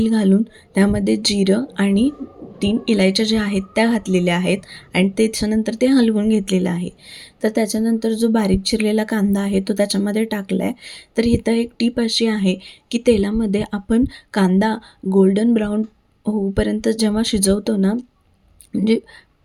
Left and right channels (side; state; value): both; identical; correlation 1.00